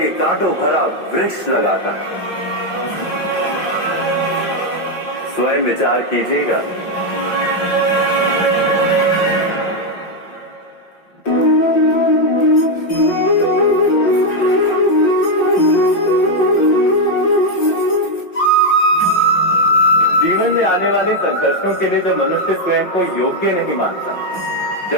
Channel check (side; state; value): right; late; 5.6 ms